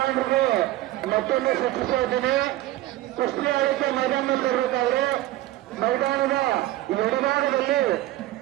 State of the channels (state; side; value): quieter; left; 15.6 dB